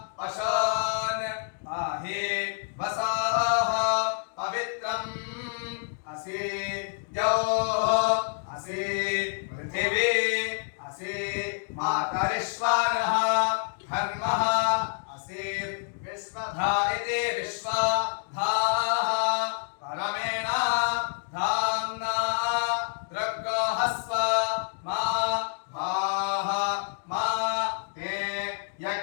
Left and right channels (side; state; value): right; silent; digital silence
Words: पशून् पाहि वसाः पवित्रम् असि द्यौः असि पृथिवी असि मातरिश्वरः धर्मः असि विश्वधा इति विश्वधाः परमेण धाम्ना दृग्गोहस्व मा भाः मा ते